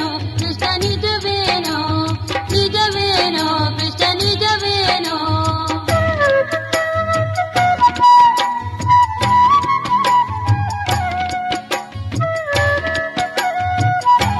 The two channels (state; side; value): identical; both; correlation 1.00